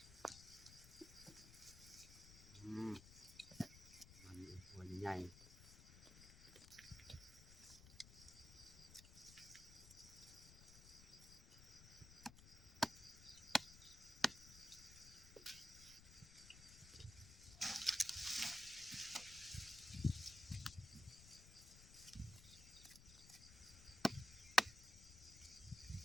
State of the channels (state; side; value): noise; left; rumble, 16 dB below the sound